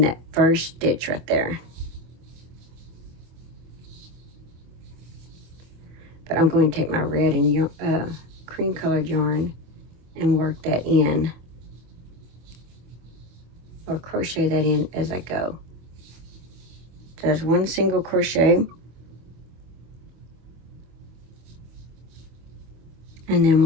that first stitch right there. But I'm going to take my red and cream colored yarn and work that in, or crochet that in as I go. So there's 1 single crochet, and then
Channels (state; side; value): late; left; 25 ms